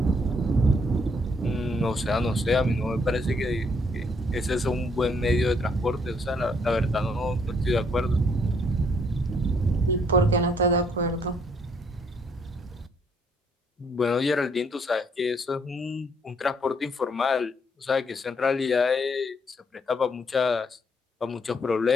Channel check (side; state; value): both; normal; correlation 0.68